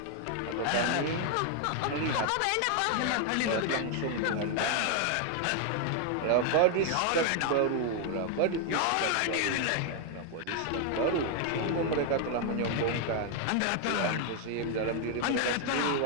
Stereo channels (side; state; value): both; different; correlation 0.00